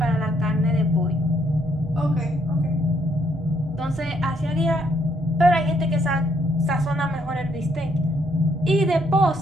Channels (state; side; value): normal; both; correlation 0.71